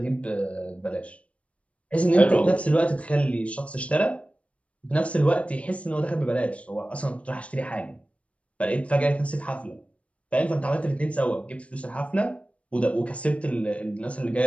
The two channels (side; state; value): right; late; 0.063 ms